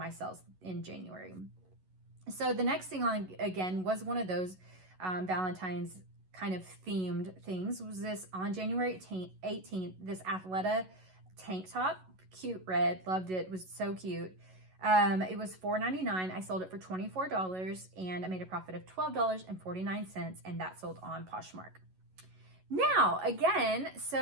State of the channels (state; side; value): late; left; 11 ms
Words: sales in January. So the next thing on, again, was one of those Valentine's kind of themed things. Was this on January 18th, this Athleta tank top, cute red, loved it, was so cute. It was $4.99. I sold it for $24 and I made a profit of $12.49, and that sold on Poshmark. Now, again,